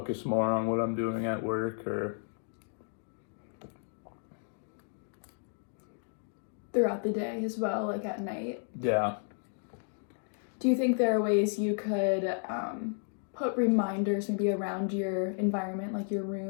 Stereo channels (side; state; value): right; silent; 56 dB below the other